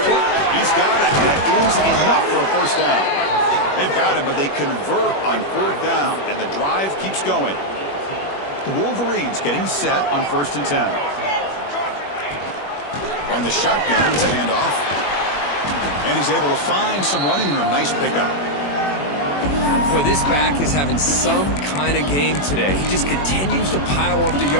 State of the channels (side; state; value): right; late; 21 ms